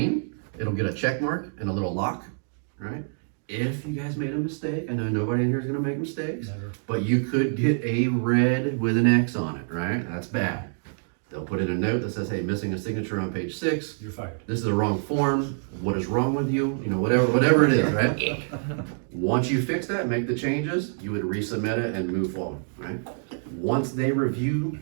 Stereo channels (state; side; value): silent; left; digital silence